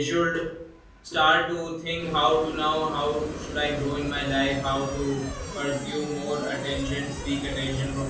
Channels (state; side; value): identical; both; correlation 1.00